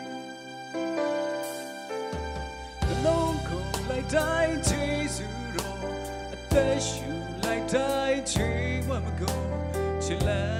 လုံးကိုလိုက်တိုင်းဂျေဇုတော်အသက်ရှူလိုက်တိုင်းချီဝမကုန်ချစ်လန်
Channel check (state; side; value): identical; both; correlation 1.00